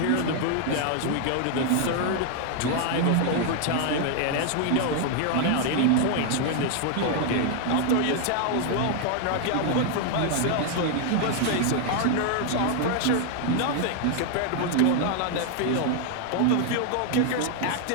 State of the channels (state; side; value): different; both; correlation 0.00